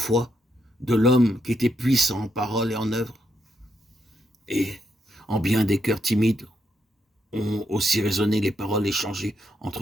de l'homme qui était puissant en parole et en œuvre? Et en bien des cœurs timides ont aussi résonné les paroles échangées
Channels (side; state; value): both; normal; correlation 0.79